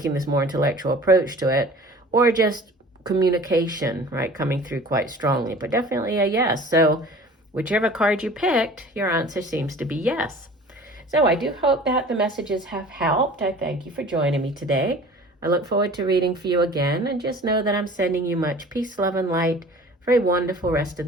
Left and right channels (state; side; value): normal; both; correlation 0.45